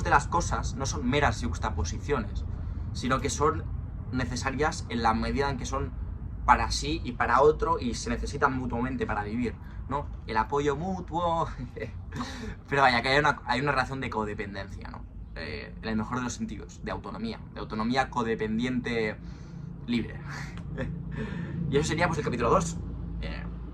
de las cosas no son meras yuxtaposiciones, sino que son necesarias en la medida en que son para sí y para otro y se necesitan mutuamente para vivir, ¿no? El apoyo mutuo... Pero vaya, que hay una relación de codependencia, ¿no? En el mejor de los sentidos, de autonomía codependiente libre. Y eso sería pues el capítulo 2.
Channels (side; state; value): both; identical; correlation 1.00